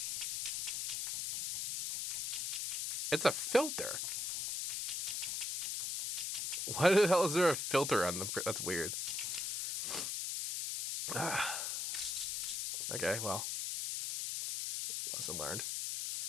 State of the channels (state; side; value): noise; left; hiss, 2 dB below the sound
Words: It's a filter. Why the hell is there a filter on the... That's weird. Okay, well. Lesson learned.